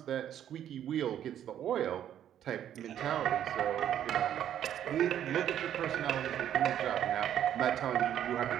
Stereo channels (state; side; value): quieter; left; 10.5 dB